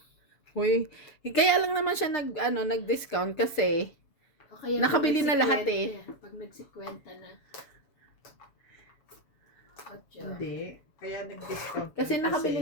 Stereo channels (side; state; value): right; late; 7.1 ms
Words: Uy, kaya lang naman siya nag-discount kasi O kaya Nakabili pag na lahat nagsikwenta, Pag nagsikwenta na. 8. Hindi. Kaya nag-discount. Kasi